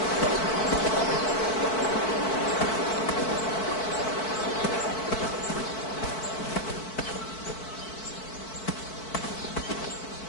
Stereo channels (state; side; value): late; right; 4.6 ms